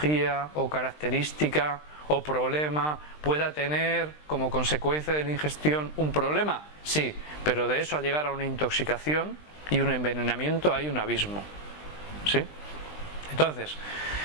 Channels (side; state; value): right; late; 20 ms